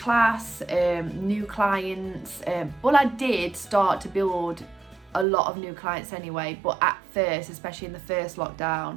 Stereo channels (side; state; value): left; drops out; at 5.2 s